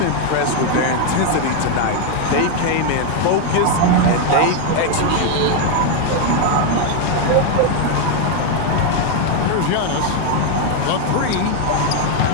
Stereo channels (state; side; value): different; both; correlation 0.01